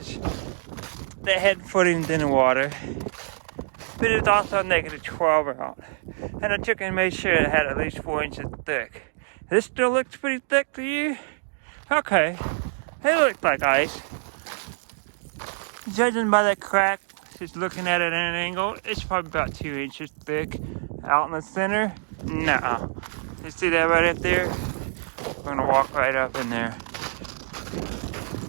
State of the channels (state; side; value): silent; left; 59 dB below the other